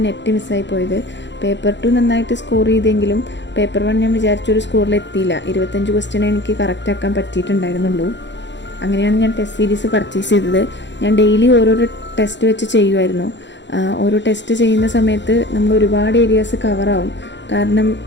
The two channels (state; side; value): late; right; 0.52 ms